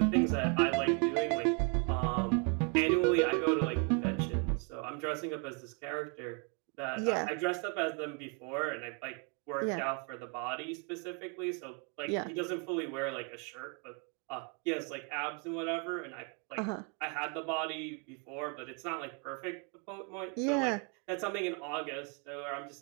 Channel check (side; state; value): left; quieter; 36.4 dB